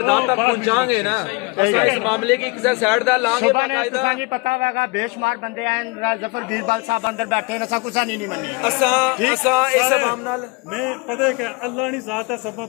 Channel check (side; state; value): right; quieter; 27.9 dB